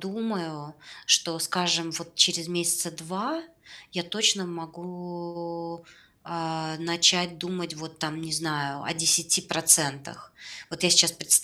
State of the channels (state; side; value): identical; both; correlation 1.00